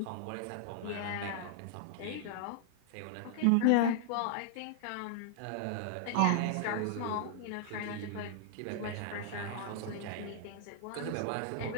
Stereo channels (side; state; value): both; different; correlation -0.01